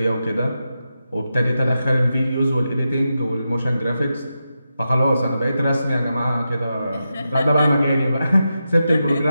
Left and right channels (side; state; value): both; inverted; correlation -0.88